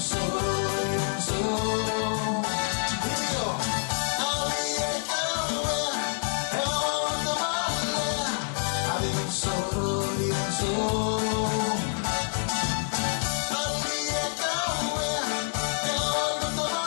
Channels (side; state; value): right; silent; 60 dB below the other